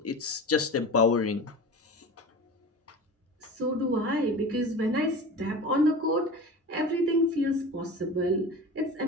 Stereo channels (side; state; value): both; normal; correlation 0.34